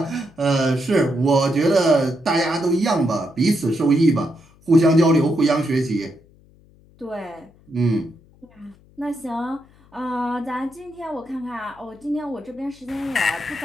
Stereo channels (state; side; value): noise; left; hum, 28 dB below the sound